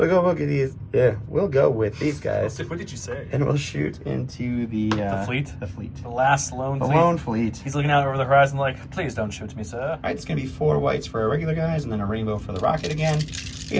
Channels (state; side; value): identical; both; correlation 1.00